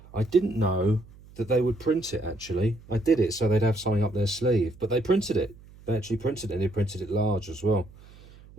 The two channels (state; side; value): noise; right; hum, 22 dB below the sound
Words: didn't know that they would print it. Actually, I did it so they'd have something up their sleeve, but they printed it. They actually printed it, and they printed it large as well,